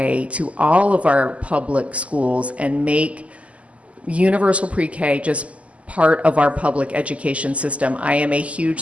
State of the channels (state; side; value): late; left; 0.065 ms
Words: to all of our public schools and make universal pre-K just part of our public education system. I am a huge